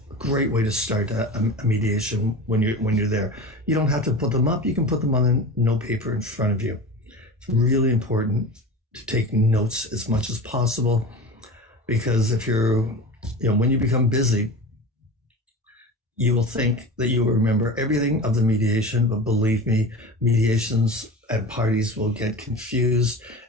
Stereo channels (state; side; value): normal; both; correlation 0.31